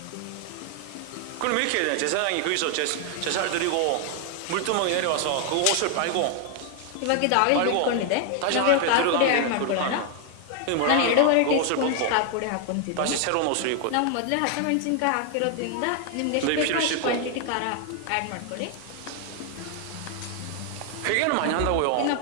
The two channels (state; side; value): different; both; correlation 0.00